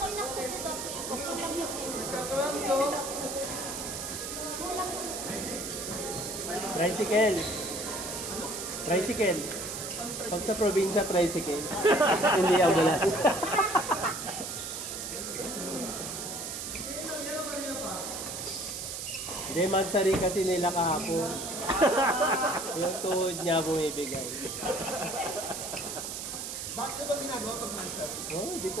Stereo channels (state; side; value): noise; right; hiss, 6 dB below the sound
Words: inaksan sa doppel ko. Kulang yung kulang yung Tricycle. Tricycle. Pag sa probinsya, tricycle. Hindi ambulance. Hindi, magsari kasi nila kahapon. Yung tuhod niya bumibigay. Bakit ba ginagawa pag mansar? Oh, hindi ko